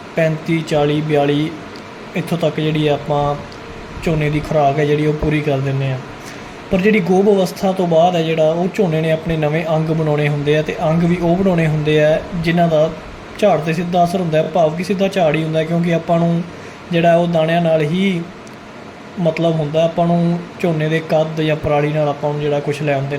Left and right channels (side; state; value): both; identical; correlation 1.00